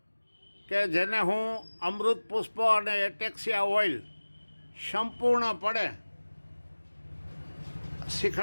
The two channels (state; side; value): inverted; both; correlation -1.00